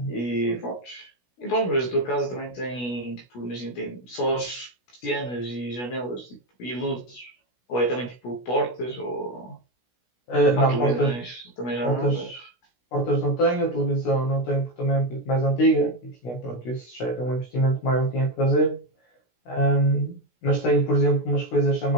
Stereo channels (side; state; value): right; late; 16 ms